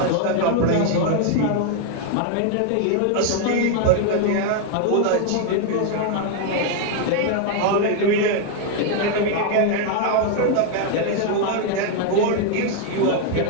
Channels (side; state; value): both; different; correlation 0.00